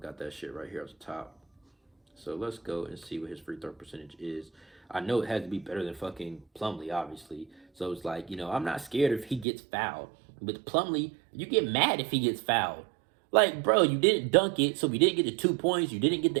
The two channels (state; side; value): drops out; left; at 9.5 s